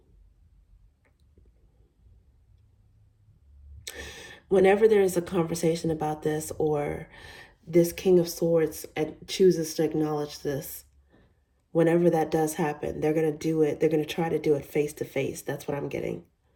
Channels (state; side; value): identical; both; correlation 1.00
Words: Whenever there is a conversation about this, or this King of Swords chooses to acknowledge this, whenever that does happen, they're going to do it. They're going to try to do it face to face. That's what I'm getting.